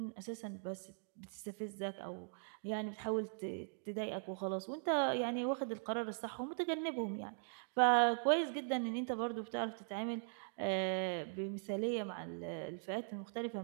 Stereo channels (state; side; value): silent; left; digital silence